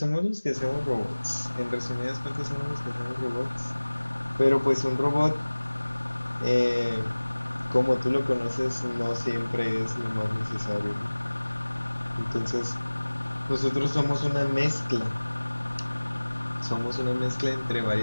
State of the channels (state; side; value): inverted; both; correlation -1.00